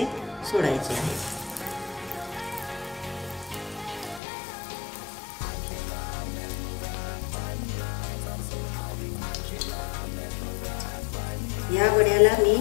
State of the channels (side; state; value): right; drops out; at 4.2 s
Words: सोडायचे आहे। या वड्याला मी